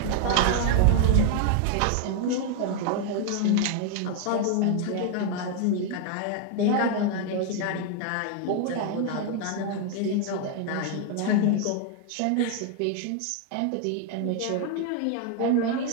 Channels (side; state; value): both; different; correlation 0.00